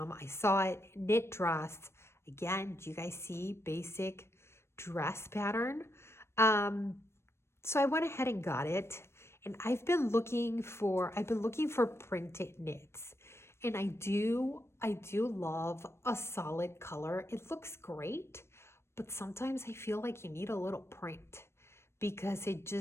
I saw it, knit dress. Again, do you guys see basic dress pattern? So I went ahead and got it. And I've been looking for printed knits. And I do love a solid color. It looks great, but sometimes I feel like you need a little print, because it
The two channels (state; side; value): late; right; 0.12 ms